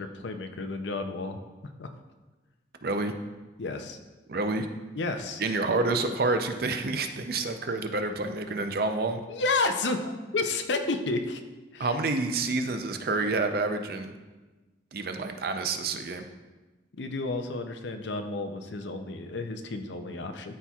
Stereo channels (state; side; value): normal; both; correlation 0.16